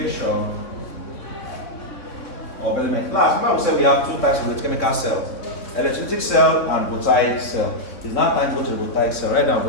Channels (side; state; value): right; late; 3.6 ms